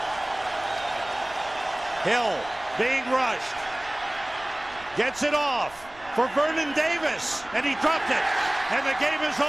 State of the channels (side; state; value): right; noise; rumble, 23 dB below the sound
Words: Hill being rushed. Gets it off for Vernon Davis, and he dropped it. And the game is